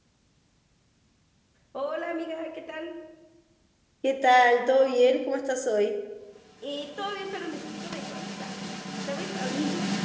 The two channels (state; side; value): identical; both; correlation 1.00